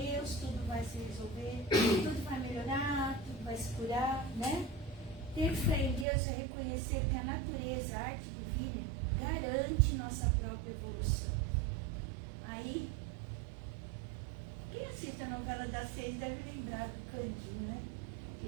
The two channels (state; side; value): drops out; left; at 6.1 s